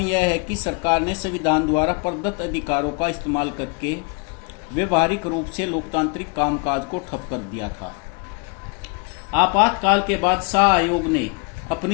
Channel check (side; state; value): right; quieter; 33.4 dB